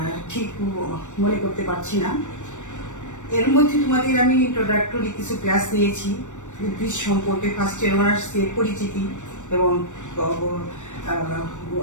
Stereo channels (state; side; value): late; right; 0.85 ms